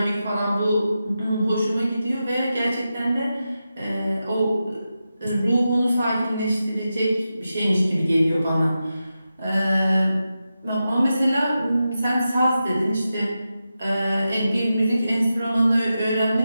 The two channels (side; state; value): both; inverted; correlation -0.90